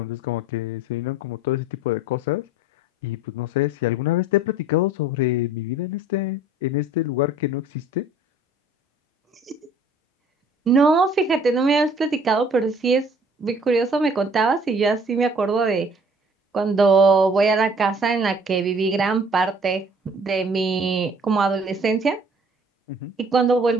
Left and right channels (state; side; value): normal; both; correlation 0.54